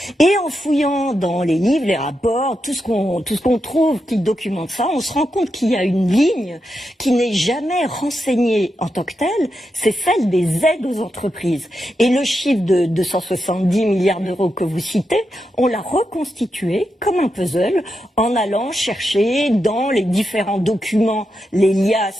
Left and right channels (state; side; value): normal; both; correlation 0.86